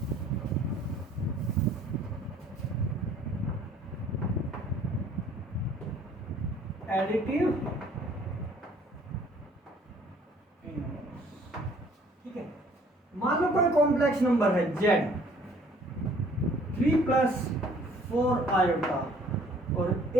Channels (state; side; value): normal; both; correlation 0.57